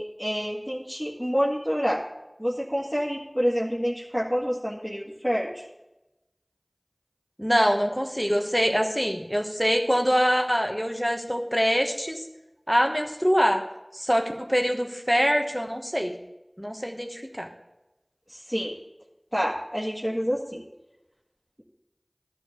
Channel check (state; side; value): identical; both; correlation 1.00